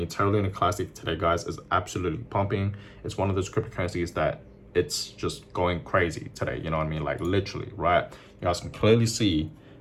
Terra Luna Classic today, guys, is absolutely pumping. It's one of those cryptocurrencies that it's just going crazy today. You know what I mean? Like literally, right? You guys can clearly see.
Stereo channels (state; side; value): identical; both; correlation 1.00